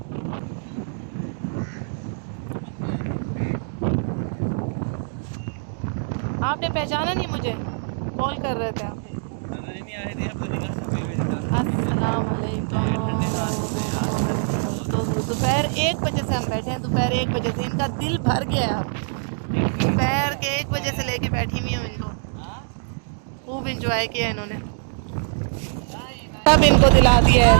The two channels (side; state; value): left; silent; digital silence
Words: आपने पहचाना नहीं मुझे? कॉल कर रहे थे आप। नहीं आ रही थी, अब तो निकल सकते हैं। अस्सलाम वालेकुम। तो दोपहर 1 बजे से हम बैठे हैं, दोपहर 1 बजे से इनका दिल भर गया है अब। दोपहर के 1 बजे से लेके बैठी हुई हूँ इनको, खूब इंजॉय किया इन्होंने। सब इनको दिला दिया है